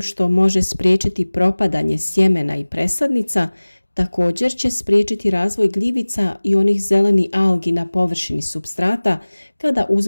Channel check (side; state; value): both; inverted; correlation -1.00